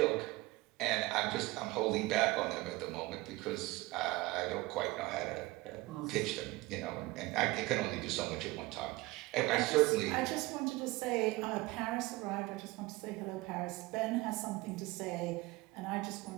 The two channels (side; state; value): left; quieter; 20.7 dB